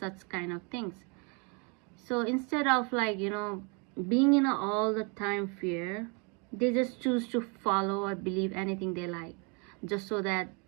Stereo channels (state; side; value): quieter; left; 33.6 dB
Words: kind of things. So instead of, like, being in all the time fear, they just choose to follow or believe anything they like, just so that